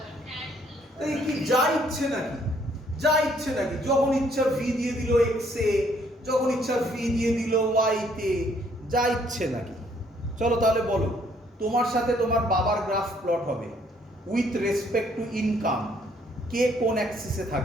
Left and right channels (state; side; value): normal; both; correlation 0.65